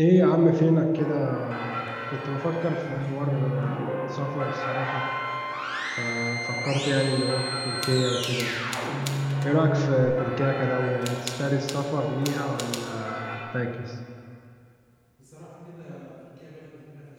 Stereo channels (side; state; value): both; identical; correlation 1.00